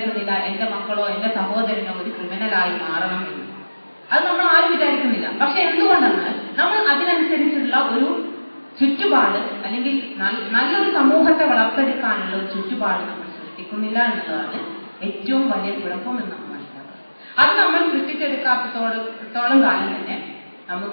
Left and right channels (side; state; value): both; inverted; correlation -1.00